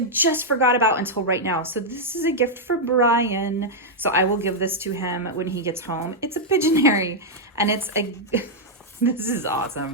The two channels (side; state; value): both; normal; correlation -0.04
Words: just forgot about until right now. So this is a gift for Brian. So I will give this to him when he gets home. It's a Pigeonary, and it's a, this is